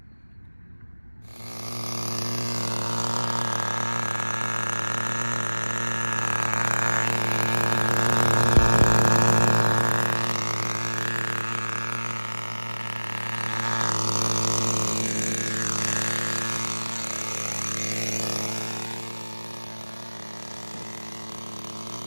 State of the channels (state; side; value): inverted; both; correlation -1.00